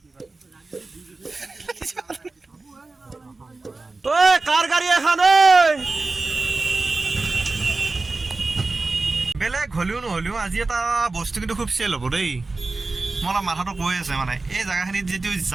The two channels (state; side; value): quieter; left; 3.5 dB